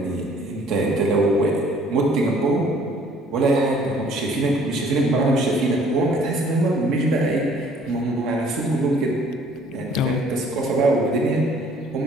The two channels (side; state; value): both; normal; correlation 0.57